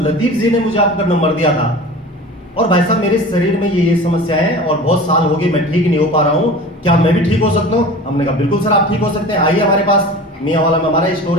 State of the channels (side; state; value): both; normal; correlation 0.37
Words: लतीफ जी ने मुझे आपका नंबर दिया था और भाई साहब मेरे शरीर में ये समस्या है और बहुत साल हो गए मैं ठीक नहीं हो पा रहा हूँ, क्या मैं भी ठीक हो सकता हूँ? हमने कहा बिल्कुल सर आप ठीक हो सकते हैं, आइए हमारे पास। मियांवाला में हमारा स्टोर